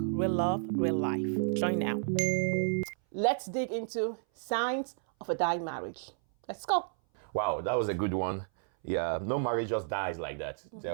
love, real life. Join now. Let's dig into signs of a dying marriage. Let's go. Wow, that was a good one. Yeah, no marriage just dies like that. There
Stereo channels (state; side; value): silent; left; 57 dB below the other